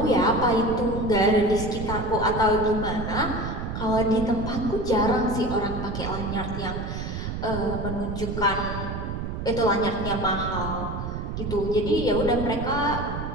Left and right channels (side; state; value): right; noise; rumble, 5 dB below the sound